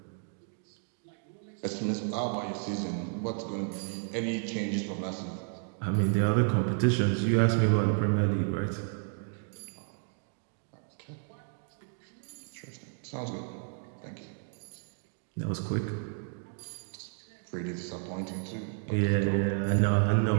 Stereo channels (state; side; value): silent; left; 56 dB below the other